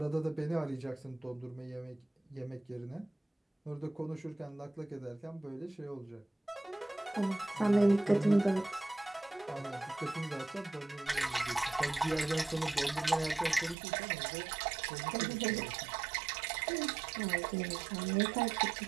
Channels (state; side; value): drops out; left; at 13.8 s